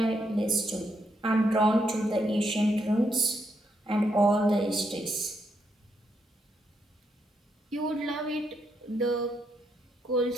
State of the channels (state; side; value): normal; both; correlation 0.77